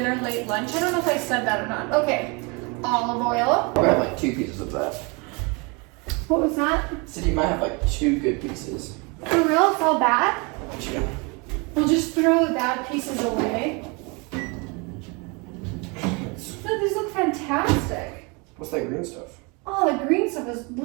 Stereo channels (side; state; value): left; quieter; 29.8 dB